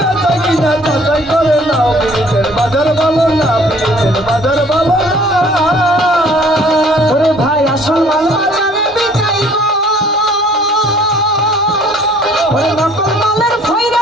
কিনা যাচাই করে না পিড়িতের বাজার ভালো না পিড়িতের বাজার ভালো না ওরে ভাই আসল মাল বাজারে বিকাই গো ওরে নকল মালের ভৈরা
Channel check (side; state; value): both; normal; correlation 0.56